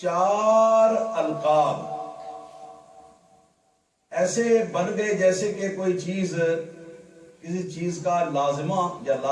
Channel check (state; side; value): identical; both; correlation 1.00